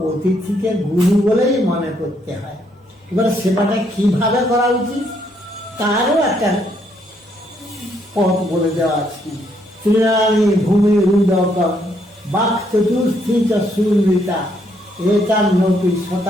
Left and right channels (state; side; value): normal; both; correlation 0.72